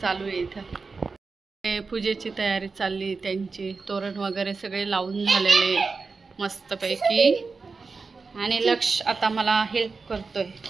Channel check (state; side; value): quieter; left; 4.4 dB